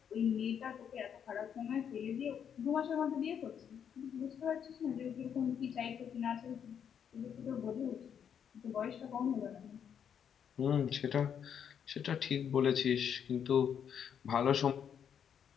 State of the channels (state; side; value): quieter; right; 8.1 dB